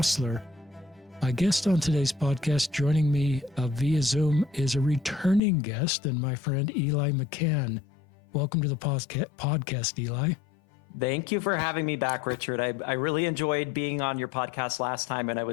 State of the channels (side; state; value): right; drops out; at 5.4 s